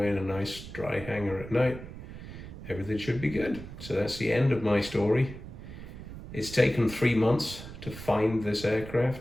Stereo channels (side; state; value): right; noise; rumble, 12 dB below the sound